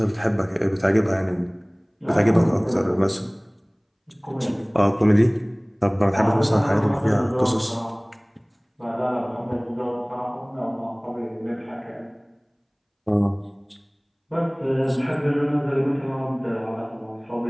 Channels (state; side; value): identical; both; correlation 1.00